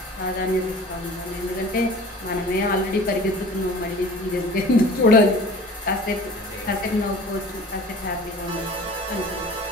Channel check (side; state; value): both; normal; correlation 0.43